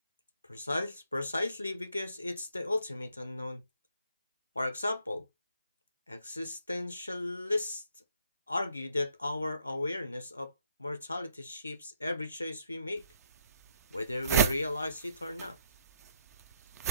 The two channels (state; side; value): inverted; both; correlation -0.71